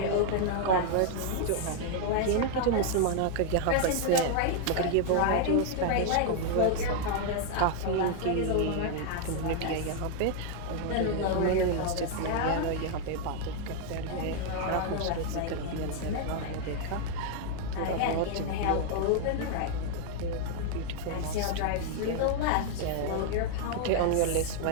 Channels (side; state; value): both; different; correlation 0.00